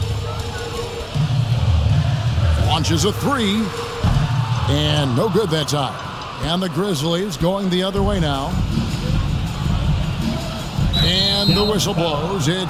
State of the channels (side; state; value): both; identical; correlation 1.00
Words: Launches a 3. And no good that time. And the Grizzlies going the other way now. And the whistle blows.